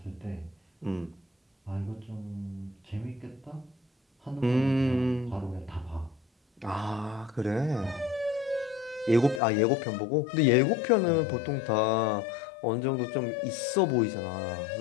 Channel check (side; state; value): right; drops out; at 9.4 s